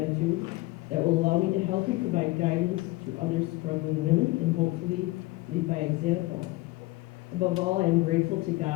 that will allow me to help and provide guidance to other struggling women and hopefully lead by example. Above all, I am grateful to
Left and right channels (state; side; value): quieter; right; 20.6 dB